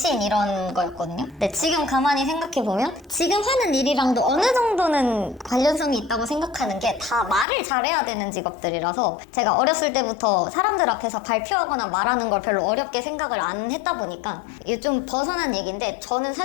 이런 거였거든요. 근데 지금 가만히 생각해보면 지금 하는 일이랑도 어느 정도는 관련성이 있다고 생각하는 게 다 말을 잘해야 되는 직업들이라서, 제가 어렸을 때부터 사람들 앞에서 발표하거나 말하는 걸 별로 어렵게 생각을 안 했다 보니까, 이게 좀 벗어난 얘기인데, 저는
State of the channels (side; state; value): right; drops out; at 7.5 s